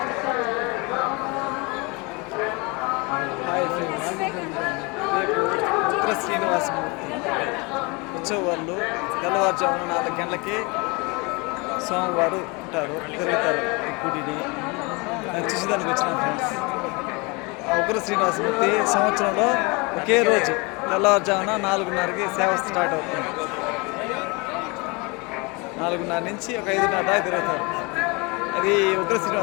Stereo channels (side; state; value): right; quieter; 28.2 dB